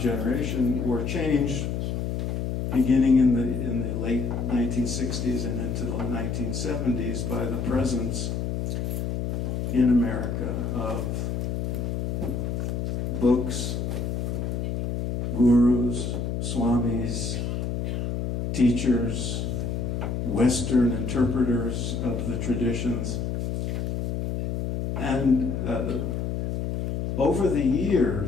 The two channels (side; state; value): left; noise; hum, 1 dB below the sound